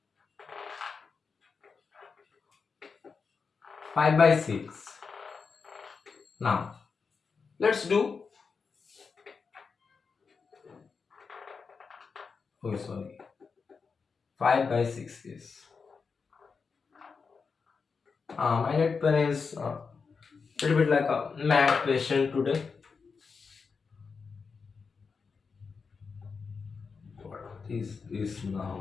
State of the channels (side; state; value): right; quieter; 5.2 dB